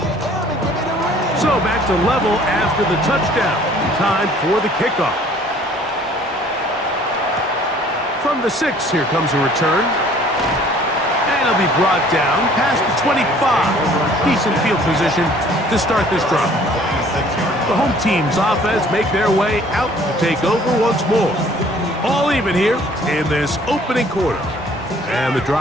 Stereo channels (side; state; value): both; normal; correlation 0.55